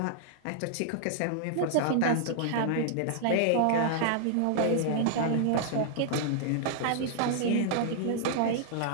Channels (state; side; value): different; both; correlation -0.01